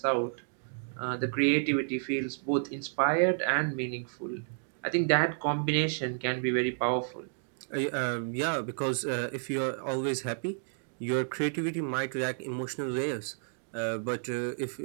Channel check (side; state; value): left; silent; digital silence